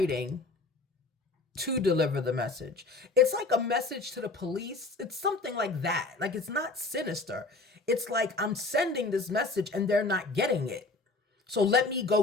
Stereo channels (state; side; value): quieter; right; 3.4 dB